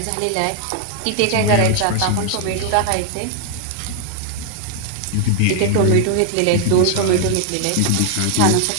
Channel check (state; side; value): different; both; correlation 0.00